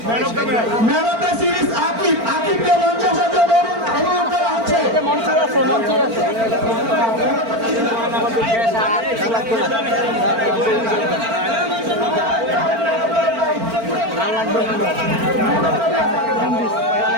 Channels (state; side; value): late; left; 4.4 ms